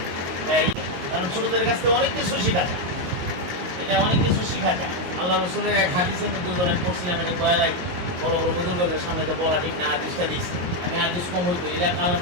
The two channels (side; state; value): left; late; 22 ms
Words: কারণ ছোটদের কাছ থেকে অনেক কিছু শেখা যায়। এটা অনেক কিছু শেখা যায়। আল্লাহ রসুলের এক হাদিসের মধ্যে আমি পড়ছিলাম, এটা বয়ালাই বড় বড় বুজুর্গদের সামনে এটা বলা ঠিক না, হাদিসটা দিয়েছি আমি। হাদিস কম হইতো এলাকা